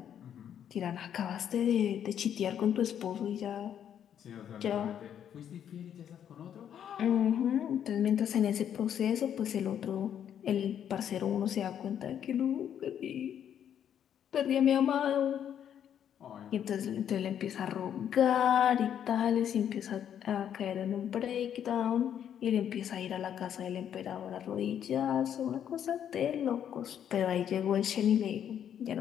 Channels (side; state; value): right; quieter; 9.3 dB